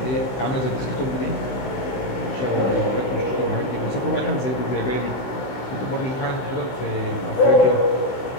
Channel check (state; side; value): late; right; 16 ms